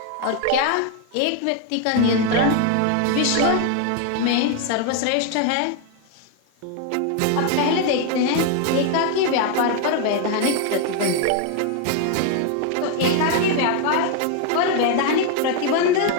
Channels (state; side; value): different; both; correlation 0.01